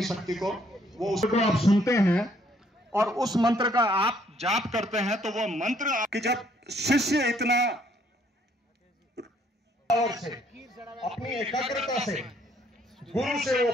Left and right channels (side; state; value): both; normal; correlation 0.66